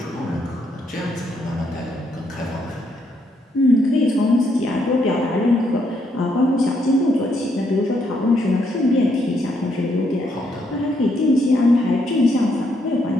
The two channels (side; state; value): both; normal; correlation 0.74